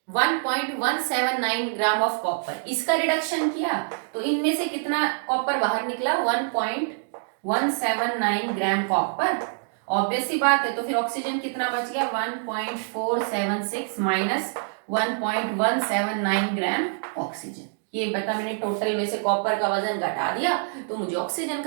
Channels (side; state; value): left; silent; digital silence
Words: 1.179 gram of copper. इसका रिडक्शन किया तो इनमें से कितना कॉपर बाहर निकला? 1.179 ग्राम कॉपर। ऑब्वियस सी बात है, तो फिर ऑक्सीजन कितना बच गया? 1.476 माइनस 1.179 ग्राम ऑक्सीजन। ये बता, मैंने टोटल में से कॉपर का वजन घटा दिया तो मुझे ऑक्सीजन